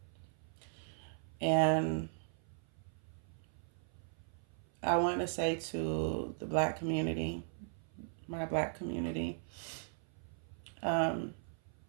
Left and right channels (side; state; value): left; silent; 52 dB below the other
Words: And I want to say to the Black community, my Black community,